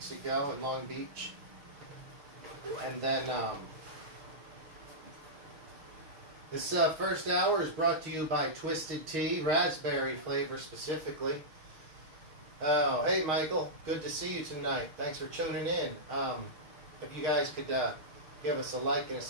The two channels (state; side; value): late; left; 6.4 ms